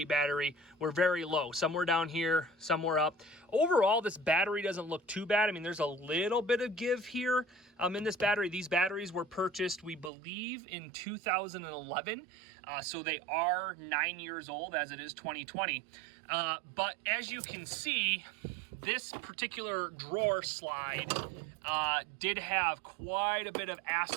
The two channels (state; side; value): drops out; left; at 10.1 s